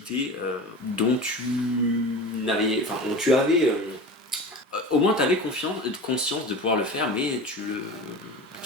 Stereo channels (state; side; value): normal; both; correlation 0.32